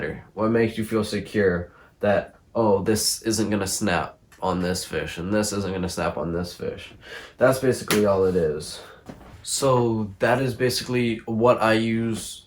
What makes you feel secure that, oh, this isn't going to snap on this fish and this isn't going to snap on this fish. That's basically all it is. So that is basically what I use,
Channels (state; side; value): identical; both; correlation 1.00